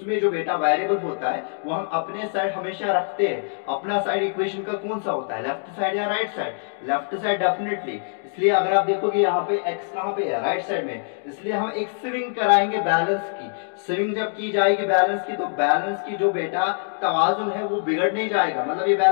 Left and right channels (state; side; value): silent; right; digital silence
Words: जो बेटा वेरिएबल होता है वो हम अपने साइड हमेशा रखते हैं। अपना साइड इक्वेशन का कौन सा होता है, लेफ्ट साइड या right side, left side definitely. इसलिए अगर आप देखोगे यहाँ पे x कहाँ पे है, राइट साइड में, इसलिए हम एक स्विंग कराएंगे बैलेंस की। स्विंग जब की जाएगी बैलेंस की, तो बैलेंस की जो बेटा तवाजुन है वो बिगड़ नहीं जाएगा, मतलब ये